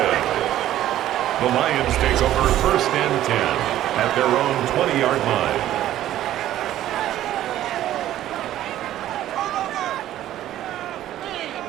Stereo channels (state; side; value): quieter; left; 13.0 dB